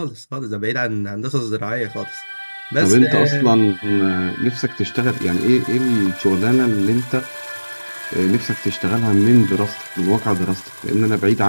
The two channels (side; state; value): both; inverted; correlation -1.00